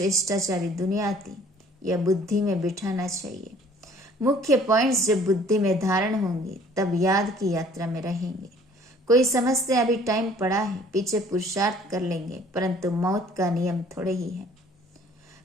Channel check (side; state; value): both; normal; correlation 0.55